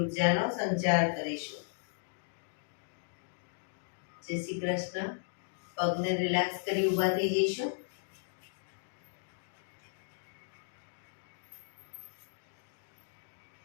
ઉર્જાનો સંચાર કરીશું. જય શ્રી કૃષ્ણ. પગને રિલેક્સ કરી ઊભા થઈ જઈશું.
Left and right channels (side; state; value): right; silent; digital silence